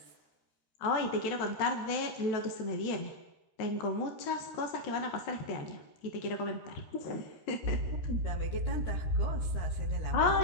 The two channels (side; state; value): right; late; 13 ms